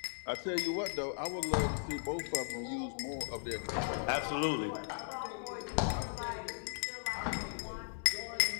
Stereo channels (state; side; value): silent; right; digital silence